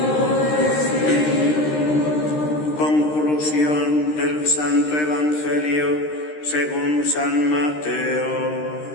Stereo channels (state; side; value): late; right; 13 ms